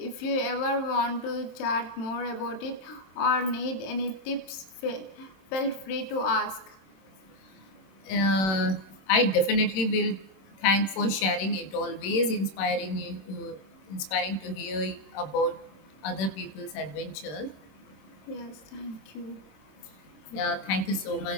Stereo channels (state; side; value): late; right; 26 ms